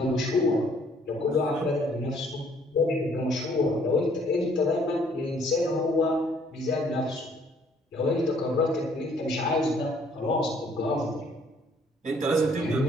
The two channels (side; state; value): both; normal; correlation 0.62